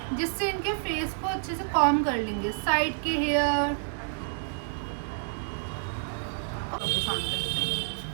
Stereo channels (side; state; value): left; silent; 59 dB below the other